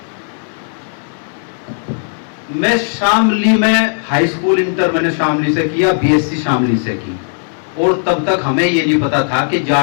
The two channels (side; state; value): right; silent; digital silence